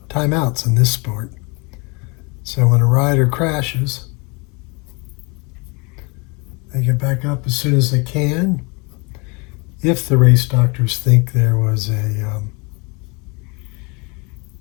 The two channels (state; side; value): quieter; right; 30.0 dB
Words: timeouts in this sport. So when a rider crashes, they get back up as soon as they can. If the race doctors think there was a